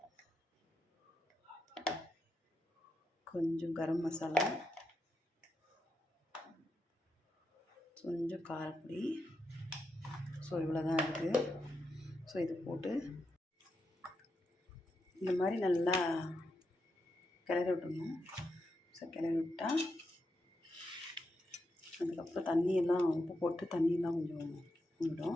கொஞ்சம் கரம் மசாலா, கொஞ்சம் காரப்பொடி. ஸோ இவ்வளோ தான் இருக்குது. ஸோ இது போட்டு இந்த மாதிரி நல்லா கிளறி விட்டுணும். ஸோ கிளறி விட்டால் அதுக்கப்புறம் தண்ணியெல்லாம் உப்பு போட்டு தண்ணியெல்லாம் கொஞ்சம்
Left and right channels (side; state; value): both; normal; correlation 0.85